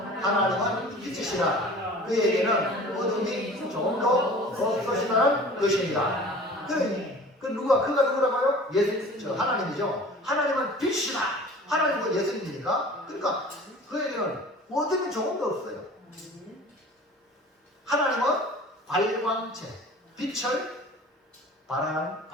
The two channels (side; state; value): both; normal; correlation 0.43